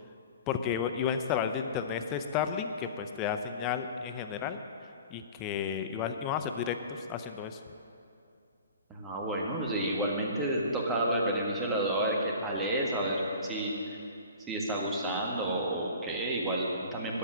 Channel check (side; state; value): both; inverted; correlation -0.38